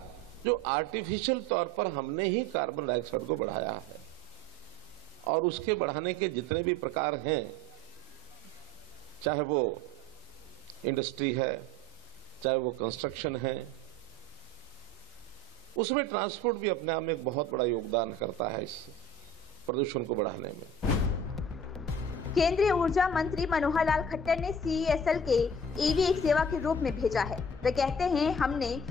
जो आर्टिफिशियल तौर पर हमने ही कार्बन डाइऑक्साइड को बढ़ाया है, और उसके बढ़ाने के जितने भी प्रकार हैं, चाहे वो इंडस्ट्री है, चाहे वो कंस्ट्रक्शन है, उसमें ट्रांसपोर्ट भी अपने आप में एक बहुत बड़ा योगदान करता है इस प्रदूषण को बढ़ाने में। केंद्रीय ऊर्जा मंत्री मनोहर लाल खट्टर ने CESL के EV एक सेवा के रूप में भेजा है। वे कहते हैं, हमने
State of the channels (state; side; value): normal; both; correlation 0.43